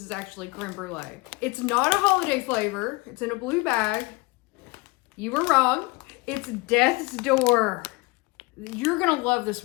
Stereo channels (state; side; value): quieter; right; 25.1 dB